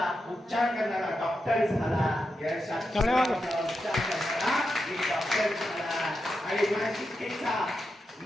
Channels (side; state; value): both; normal; correlation 0.87